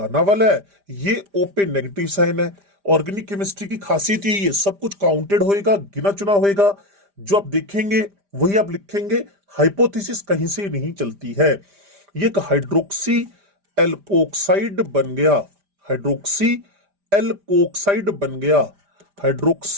वाला है, ये O पे नेगेटिव साइन है। ऑर्गेनिक केमिस्ट्री की खासियत यही है, सब कुछ काउंटेड होएगा, गिना चुना होएगा। जो आप देखेंगे वही आप लिखेंगे, हाइपोथेसिस कहीं से नहीं चलती है। ये एक हाइड्रोक्सी एल्कोक्साइड बन गया, हाइड्रोक्सी एल्कोक्साइड बन गया।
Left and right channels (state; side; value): late; left; 5.0 ms